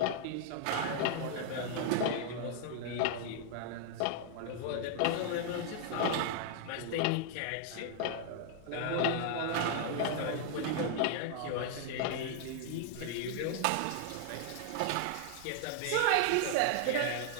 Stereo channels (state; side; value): different; both; correlation 0.00